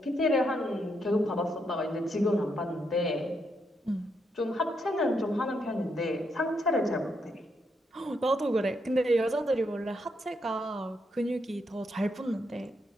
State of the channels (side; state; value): both; normal; correlation 0.79